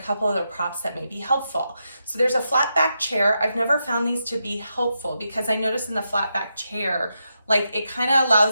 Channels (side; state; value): both; inverted; correlation -0.85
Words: couple other props that may be helpful. So there's a flat back chair. I've never found these to be helpful, because I noticed in the flat back chair, like, it kind of